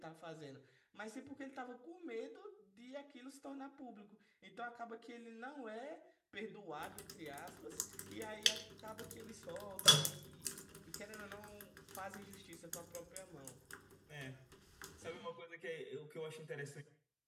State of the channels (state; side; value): identical; both; correlation 1.00